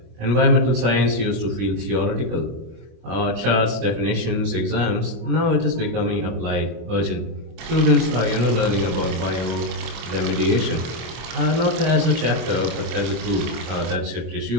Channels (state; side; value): late; left; 25 ms